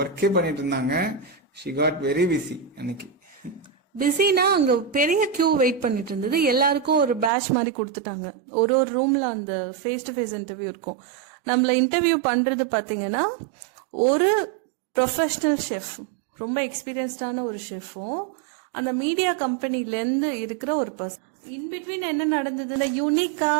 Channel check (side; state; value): left; drops out; at 7.3 s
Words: பண்ணிட்டு இருந்தாங்க. ஷி காட் வெரி பிஸி அன்னைக்கு. பிஸினா அங்க பெரிய கியூ வெயிட் பண்ணிட்டு இருந்தது. எல்லாருக்கும் ஒரு பேட்ச் மாதிரி கொடுத்துட்டாங்க. ஒரு ஒரு ரூம்ல அந்த ஃபேஸ் டு ஃபேஸ் இன்டர்வியூ இருக்கும். நம்மள இன்டர்வியூ பண்றது பாத்தீங்கன்னா ஒரு ப்ரொஃபஷனல் ஷெஃப், ரொம்ப எக்ஸ்பீரியன்ஸ்டான ஒரு ஷெஃபும் அந்த மீடியா கம்பெனிலேருந்து இருக்கிற ஒரு பர்சன். இன்பிட்வீன் என்ன நடந்ததுன்னா, யூனிக்கா